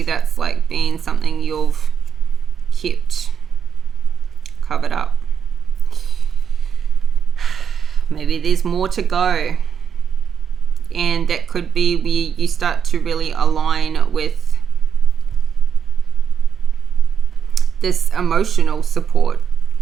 that's like being something you've kept covered up. Maybe there's more to go, and that could be where you start to really align with this emotional support,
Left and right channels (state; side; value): quieter; left; 7.6 dB